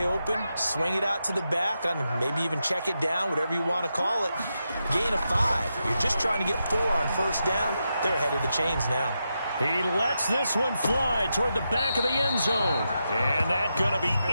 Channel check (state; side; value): inverted; both; correlation -0.86